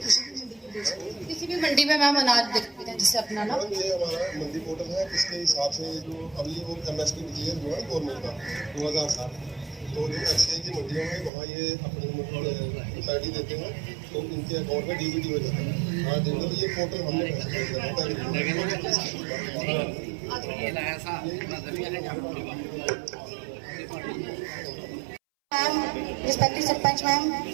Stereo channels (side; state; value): left; drops out; at 11.3 s